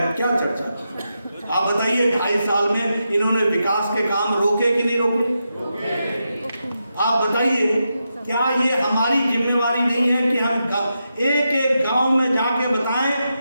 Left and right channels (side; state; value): both; inverted; correlation -0.87